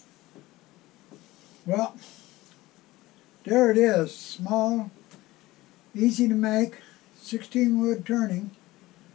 Well, there it is, small, easy to make, 16 wood turning,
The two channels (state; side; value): quieter; right; 18.5 dB